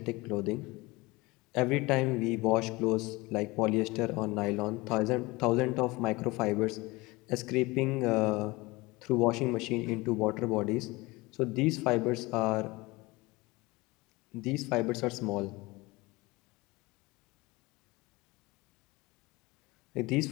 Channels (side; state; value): right; quieter; 22.5 dB